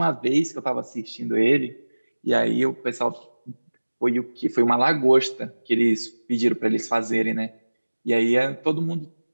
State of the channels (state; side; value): inverted; both; correlation -1.00